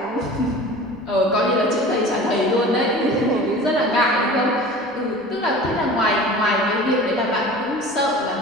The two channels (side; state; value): right; noise; rumble, 29 dB below the sound